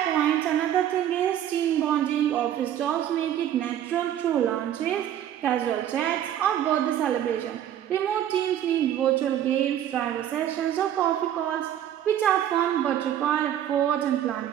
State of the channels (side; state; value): left; quieter; 10.9 dB